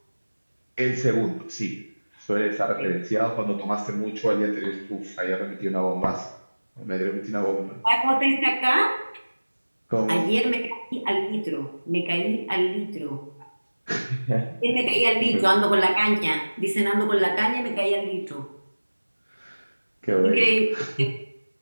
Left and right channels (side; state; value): both; inverted; correlation -1.00